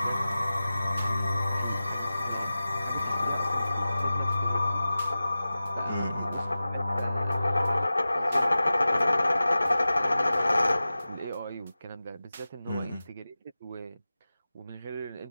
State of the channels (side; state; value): both; inverted; correlation -0.95